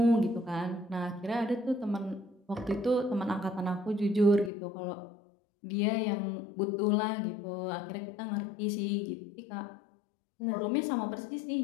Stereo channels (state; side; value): drops out; right; at 4.5 s